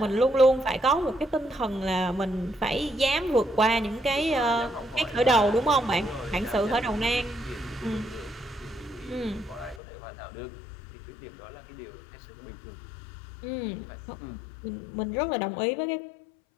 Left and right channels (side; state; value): right; drops out; at 9.8 s